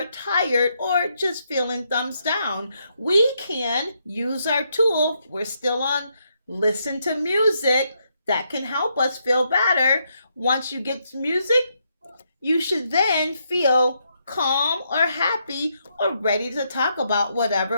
tired or just feeling thumbs down. We can use our tool. We're still on listen to music that can help us feel better. Once you get music, you should then feel calm or happy or ready to talk about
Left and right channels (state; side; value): inverted; both; correlation -0.77